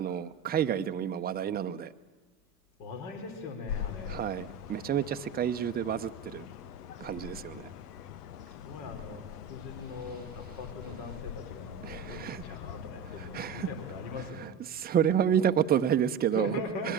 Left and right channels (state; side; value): quieter; left; 6.4 dB